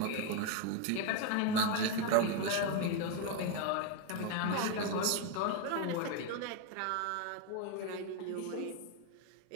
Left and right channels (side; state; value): both; different; correlation 0.02